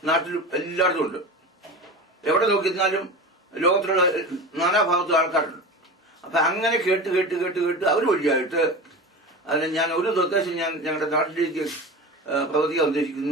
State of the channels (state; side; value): normal; both; correlation 0.30